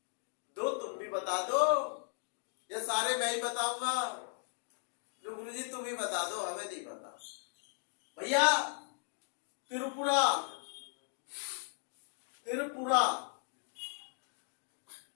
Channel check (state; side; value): silent; right; 53 dB below the other